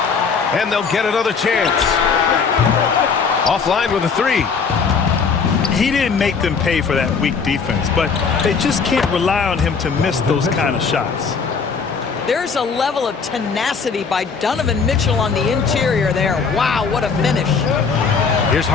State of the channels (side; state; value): right; quieter; 5.5 dB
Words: And they'll get another chance. Offline with a 3. He didn't make them pay for that weak defense, but they just can't rely on him to miss those kind of shots. There's a level of tenacity by Donovan Mitchell on the interior there. Wow, what a finish. Here's